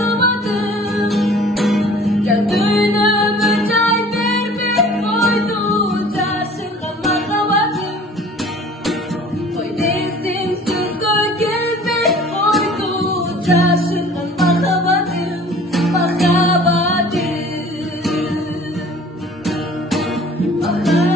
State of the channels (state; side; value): normal; both; correlation 0.48